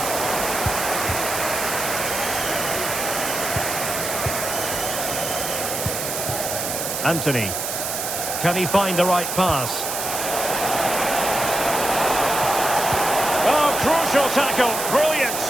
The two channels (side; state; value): right; noise; hiss, 3 dB below the sound